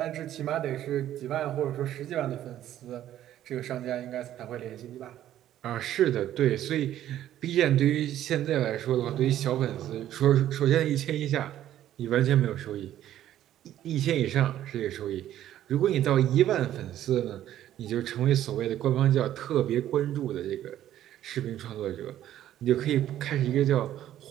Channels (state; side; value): quieter; left; 12.2 dB